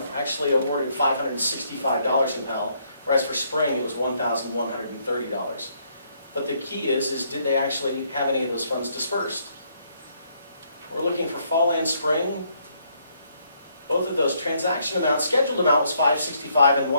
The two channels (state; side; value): inverted; both; correlation -0.71